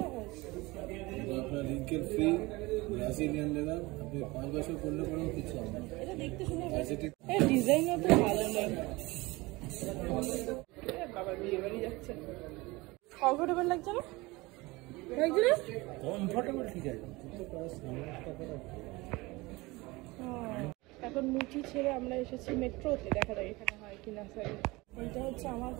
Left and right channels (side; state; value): left; quieter; 22.4 dB